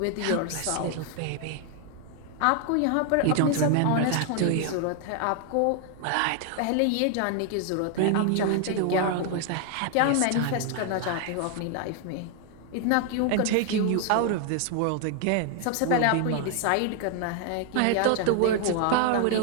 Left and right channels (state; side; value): different; both; correlation 0.00